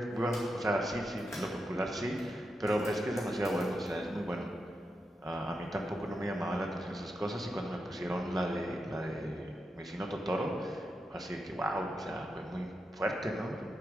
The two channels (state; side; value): normal; both; correlation 0.86